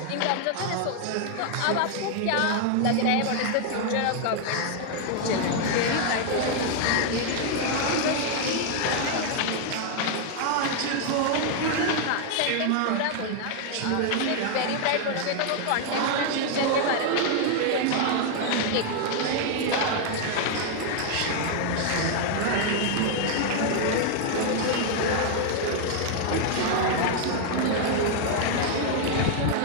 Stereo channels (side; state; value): both; different; correlation 0.00